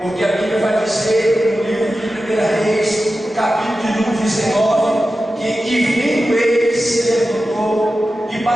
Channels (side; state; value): both; normal; correlation 0.93